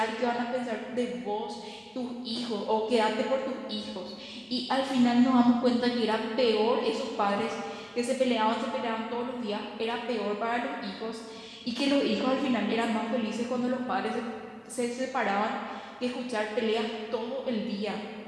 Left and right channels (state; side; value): identical; both; correlation 1.00